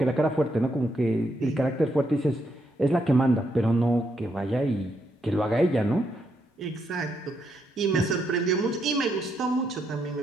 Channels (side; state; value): both; normal; correlation 0.78